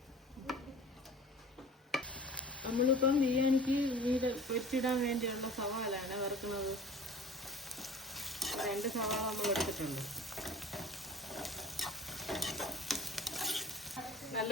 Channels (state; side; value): normal; both; correlation 0.43